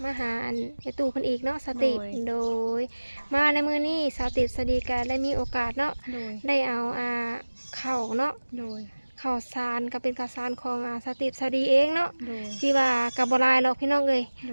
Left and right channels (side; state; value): both; inverted; correlation -1.00